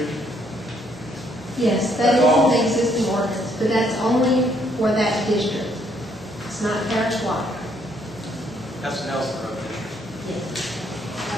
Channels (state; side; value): normal; both; correlation 0.69